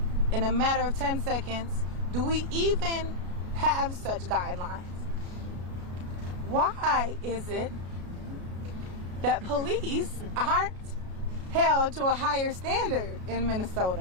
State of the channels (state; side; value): late; left; 33 ms